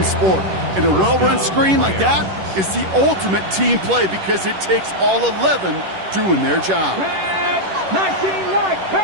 sport. And a well-run screen like that is the ultimate team play because it takes all 11 doing their job. 19 right,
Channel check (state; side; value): late; left; 10 ms